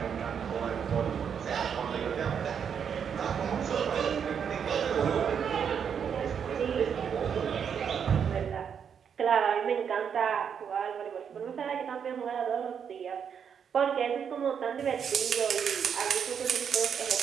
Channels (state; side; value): quieter; left; 7.5 dB